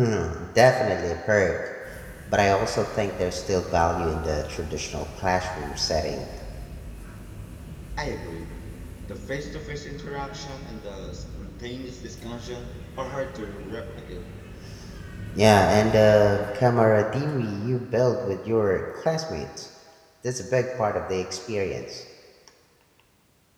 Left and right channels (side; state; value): both; identical; correlation 1.00